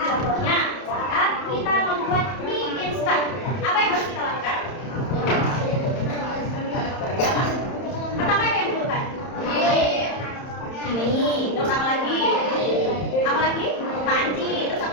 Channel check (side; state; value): right; late; 31 ms